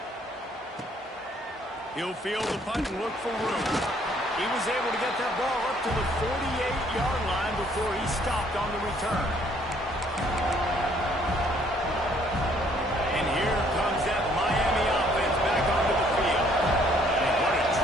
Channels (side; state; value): both; normal; correlation 0.63